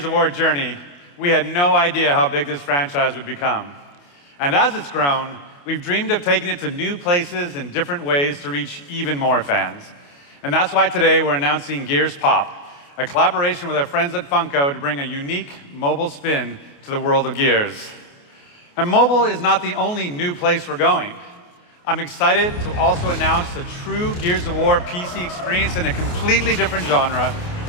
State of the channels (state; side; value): late; right; 28 ms